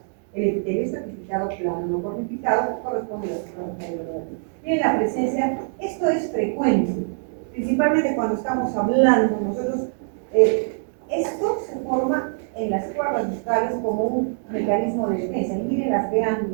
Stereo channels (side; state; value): left; silent; digital silence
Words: El epitelio estratificado plano, no cortificado, corresponde a las cuerdas bucales. Miren la presencia, esto es frecuente, principalmente cuando estamos hablando nosotros. Esto se forma en las cuerdas bucales como un mecanismo de defensa. Y miren las